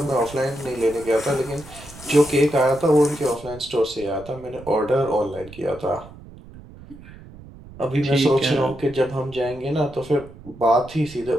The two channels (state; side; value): noise; right; rumble, 18 dB below the sound